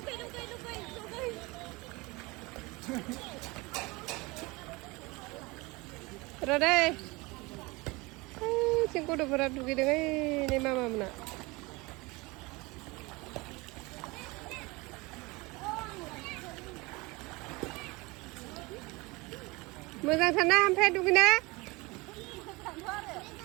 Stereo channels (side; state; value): left; quieter; 24.3 dB